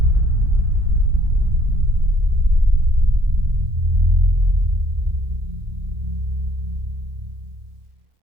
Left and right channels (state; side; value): late; left; 2.2 ms